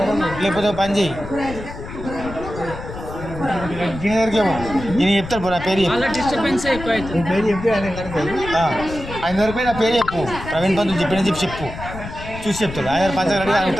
లేకపోతే పని చేయి దీని దగ్గరికి ఏమో నేను చెప్తాను పో నా పేరు నీ పేరు చెప్పి ఆయన ఆయన దగ్గర పోయి నా పేరు చెప్పు ప్రవీణ్ పంతులు చెప్పి చెప్పు చూసి చెప్తాడు ఆయన పంచగడి ఆయన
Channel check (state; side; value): noise; left; rumble, 11 dB below the sound